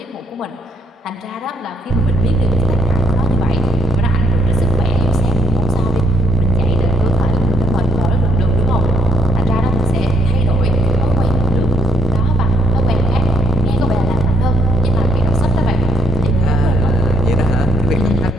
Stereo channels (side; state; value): both; normal; correlation 0.73